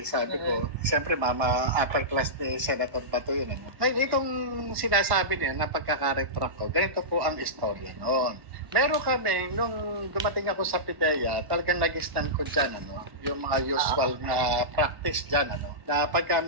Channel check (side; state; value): left; late; 1.1 ms